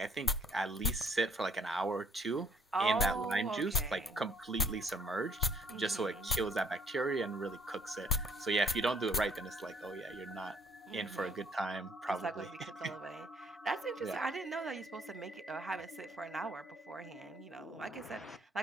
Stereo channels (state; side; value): normal; both; correlation 0.62